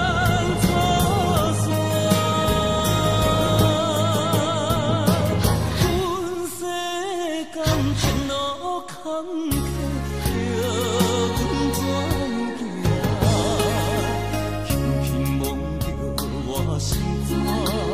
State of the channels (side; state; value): both; identical; correlation 1.00